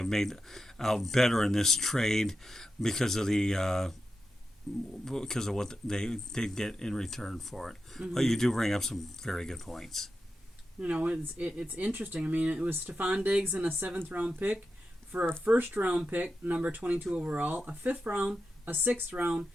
made out better in this trade because of what they did get in return for it. Mm-hmm. But you do bring up some very good points. You know, it's interesting. I mean, it was Stephon Diggs and a 7th round pick for a 1st round pick, number 22 overall, a 5th round, a 6th round,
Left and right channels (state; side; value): normal; both; correlation 0.90